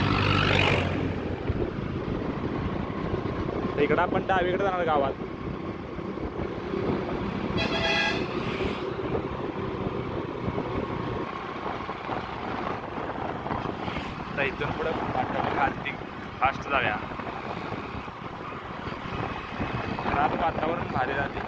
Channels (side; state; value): both; identical; correlation 1.00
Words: इकडं आपण डावीकडे जाणार गावात. तर इथून पुढे खालती फास्ट जाऊया. आज वातावरण भारी झाले,